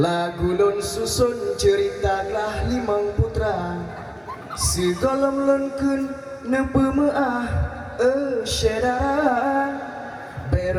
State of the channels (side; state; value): both; identical; correlation 1.00